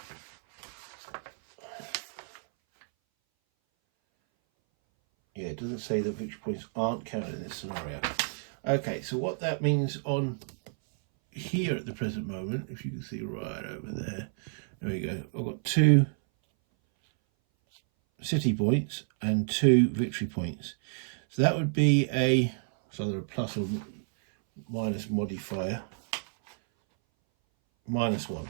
Yeah, it doesn't say that victory points aren't counted in this scenario. Okay, so what that means on here at the present moment, if you can see right over there, there we go. I've got 2 city points and 2 victory points. So that would be it's either a plus or minus modifier, -1.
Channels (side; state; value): left; silent; 58 dB below the other